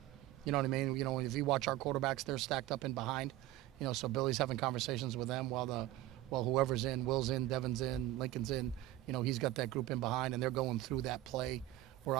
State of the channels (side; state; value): left; quieter; 15.6 dB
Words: You know what I mean? You know, if you watch our quarterbacks, they're stacked up in behind. You know, so Billy's having conversations with them while whoever's in, Will's in, Devin's in, Lincoln's in. You know, he's got that group in behind, and they're going through that play. Where